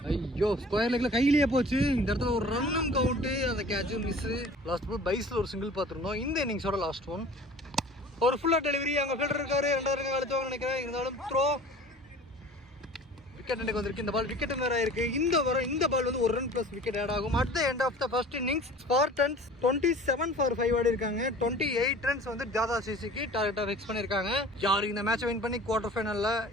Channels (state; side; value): normal; both; correlation 0.44